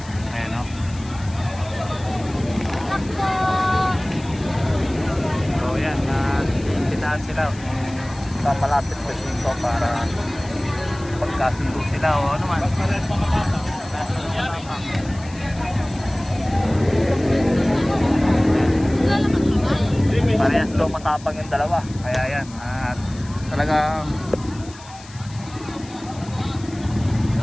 Ayan, oh. So yan, sinipitaan sila sa malapit po dito para pagkasundo sila o ano man. Parehas daw matapang yung dalawa. Kaya yan, at talagang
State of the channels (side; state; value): left; noise; hiss, 20 dB below the sound